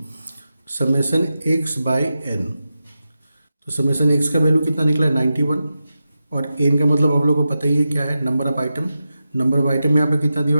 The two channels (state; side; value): inverted; both; correlation -0.91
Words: summation X by N. तो समेशन एक्स का वैल्यू कितना निकला है, 91। और एन का मतलब आप लोगों को पता ही है क्या है, number of item. Number of item यहाँ पे कितना दिया